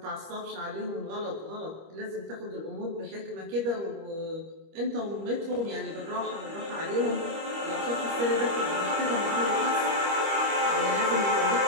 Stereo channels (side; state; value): left; late; 25 ms